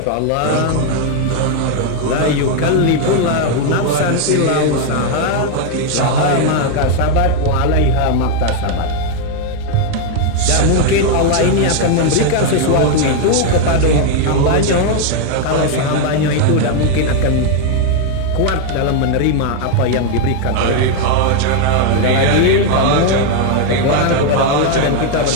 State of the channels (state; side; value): different; both; correlation 0.01